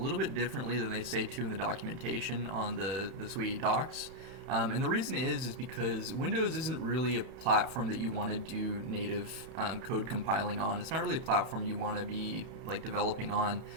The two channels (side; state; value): left; late; 31 ms